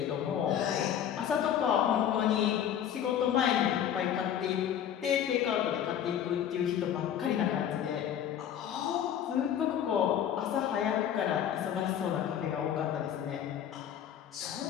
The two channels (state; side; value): quieter; right; 9.7 dB